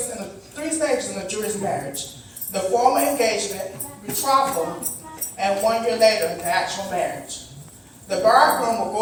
stages in the Jewish marriage: the formal engagement, betrothal, and 1 year later, the actual marriage. The bridegroom will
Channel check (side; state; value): both; identical; correlation 1.00